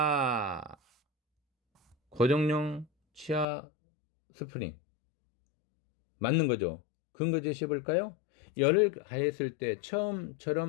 고정용 치아 스프링. 맞는 거죠. 근거 제시해 볼까요? 열을 가했을 때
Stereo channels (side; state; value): right; drops out; at 3.5 s